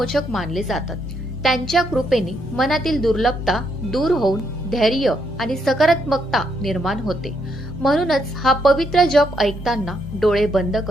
मानले जातात। त्यांच्या कृपेने मनातील दुर्लभता दूर होऊन धैर्य आणि सकारात्मकता निर्माण होते। म्हणूनच हा पवित्र जप ऐकताना डोळे बंद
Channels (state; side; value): normal; both; correlation 0.76